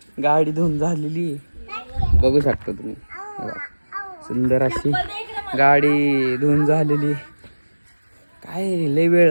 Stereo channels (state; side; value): inverted; both; correlation -1.00